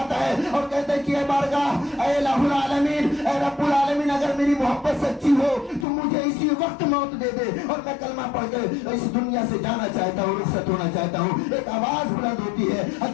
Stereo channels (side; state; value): right; drops out; at 5.9 s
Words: ہے اور کہتا ہے کہ اے بارگاہ اے الہ العالمین اے رب العالمین اگر میری محبت سچی ہو تو مجھے اسی وقت موت دے دے اور میں کلمہ پڑھ کر اس دنیا سے جانا چاہتا ہوں، رخصت ہونا چاہتا ہوں۔ ایک آواز بلند ہوتی ہے،